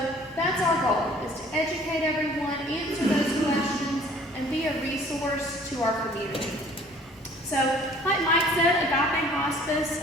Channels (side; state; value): both; normal; correlation 0.53